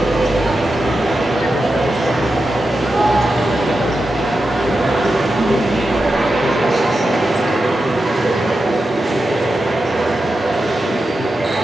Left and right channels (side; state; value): both; normal; correlation 0.89